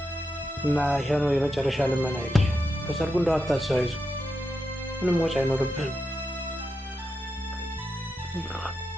እና ይሄ ነው የመጨረሻ ልመና። በሰርጉ እንደው አታስይዙ፣ ምንም ወጪ አይኖርብህም።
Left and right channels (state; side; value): normal; both; correlation 0.86